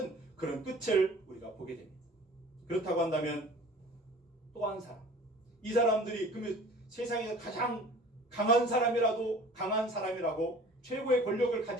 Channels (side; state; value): both; normal; correlation 0.46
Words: 그런 끝을 우리가 보게 됩니다. 그렇다고 한다면 또 한 사람, 이 사람들이 그러면 세상에서 가장 강한 사람이라고 최고의 권력을